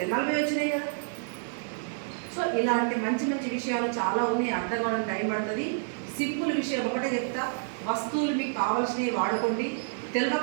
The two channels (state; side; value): silent; left; digital silence